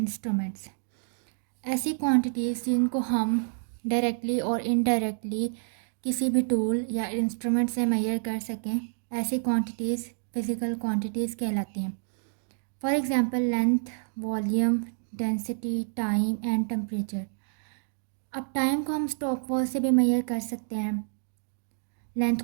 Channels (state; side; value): silent; left; digital silence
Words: ऐसी क्वांटिटीज़ जिनको हम डायरेक्टली और इनडायरेक्टली किसी भी टूल या इंस्ट्रूमेंट से मेजर कर सकें, ऐसी क्वांटिटीज़ फ़िज़िकल क्वांटिटीज़ कहलाती हैं। For example length, volume, density, time and temperature. अब टाइम को हम स्टॉप वॉच से भी मेजर कर सकते हैं, लेंथ